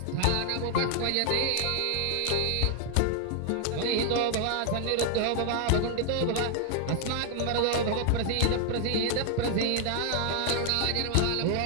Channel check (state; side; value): different; both; correlation 0.00